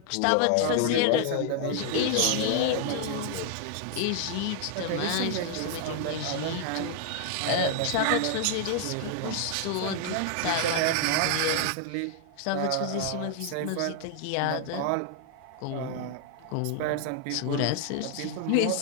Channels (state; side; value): different; both; correlation 0.00